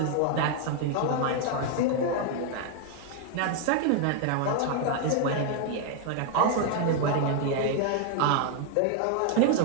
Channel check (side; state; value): both; different; correlation 0.00